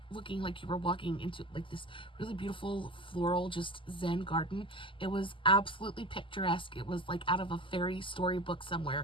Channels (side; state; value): right; late; 0.25 ms